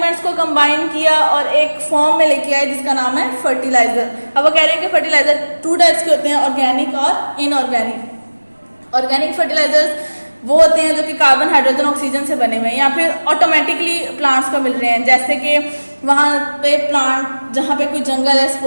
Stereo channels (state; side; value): inverted; both; correlation -1.00